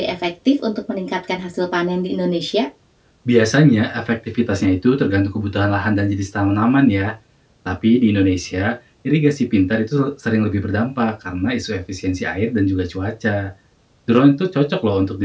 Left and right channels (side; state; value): both; identical; correlation 1.00